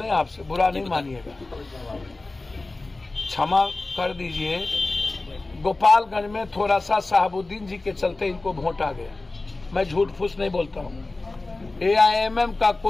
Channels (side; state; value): right; quieter; 3.2 dB